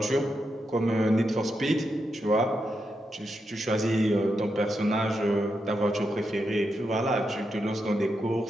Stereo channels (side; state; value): both; normal; correlation 0.85